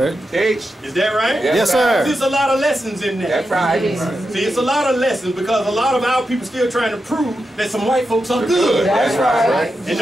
Teach. Is that right? That's Yes, sir. There's a lot of lessons in That's that. right. See, it's a lot of lessons because a lot of our people still trying to prove that some white folks are good. That's right. And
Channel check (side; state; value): both; normal; correlation 0.88